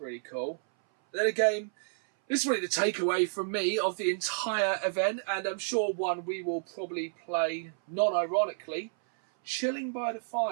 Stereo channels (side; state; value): left; silent; 58 dB below the other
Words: cool. Then again, this is really the takeaway from me of the entire event, and I'm sure one we will probably play non-ironically. Chilling by the